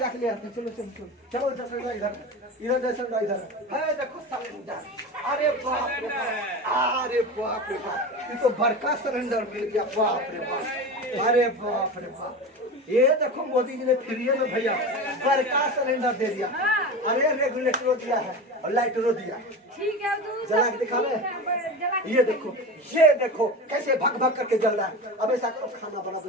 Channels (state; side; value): normal; both; correlation 0.27